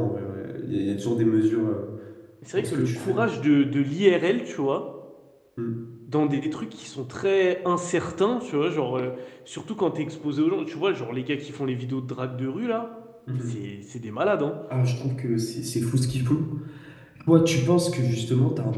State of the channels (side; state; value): both; identical; correlation 1.00